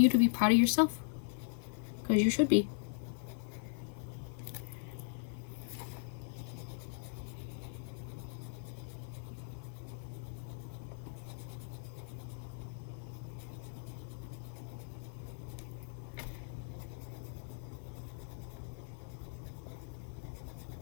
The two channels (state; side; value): silent; right; 52 dB below the other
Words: to be proud of yourself, because you should be.